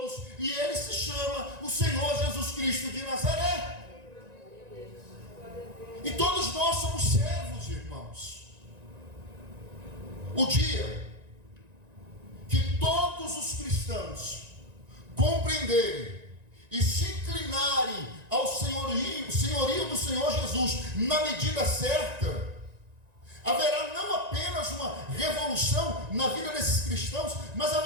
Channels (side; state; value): left; late; 1.9 ms